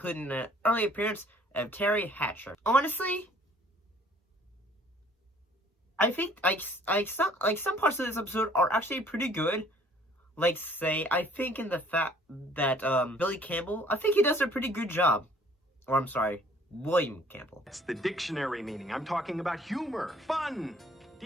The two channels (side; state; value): both; normal; correlation 0.57